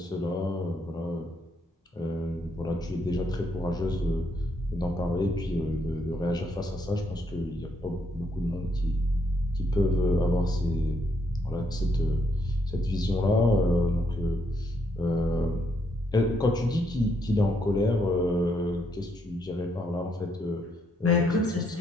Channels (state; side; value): normal; both; correlation 0.75